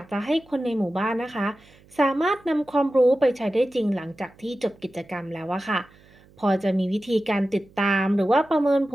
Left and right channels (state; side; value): noise; right; hum, 27 dB below the sound